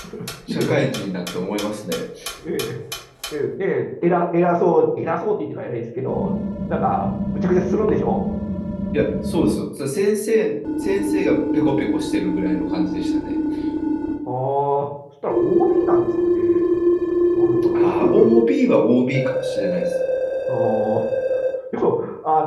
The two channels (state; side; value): identical; both; correlation 1.00